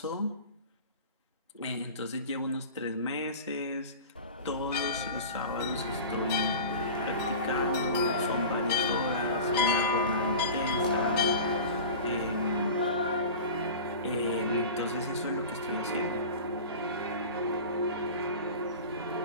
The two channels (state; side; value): inverted; both; correlation -0.34